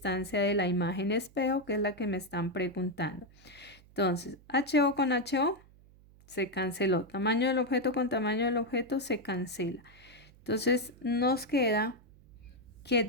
de la imagen espejo, que es la que me están preguntando. Entonces, HO con HO se canceló. Tamaño del objeto con tamaño del objeto se cancela. Entonces, nos queda que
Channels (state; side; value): noise; right; hum, 25 dB below the sound